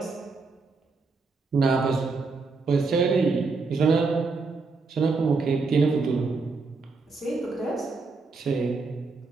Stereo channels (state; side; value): quieter; left; 4.1 dB